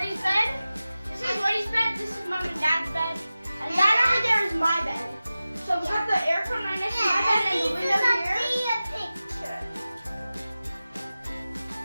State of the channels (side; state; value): both; inverted; correlation -0.95